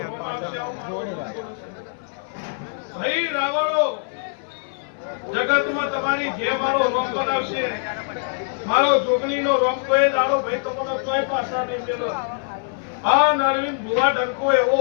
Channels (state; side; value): silent; right; 59 dB below the other